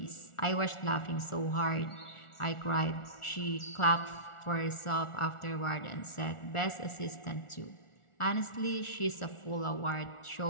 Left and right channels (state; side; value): late; right; 1.4 ms